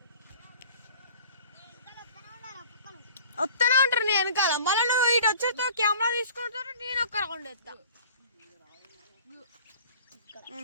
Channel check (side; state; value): both; inverted; correlation -0.46